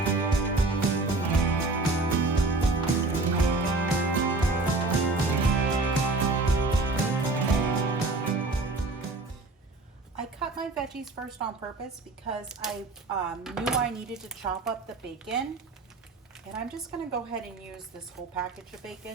I cut my veggies first on purpose because I knew I needed to chop up the bacon. And I'm just gonna go ahead and use this whole package of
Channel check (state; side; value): quieter; left; 3.3 dB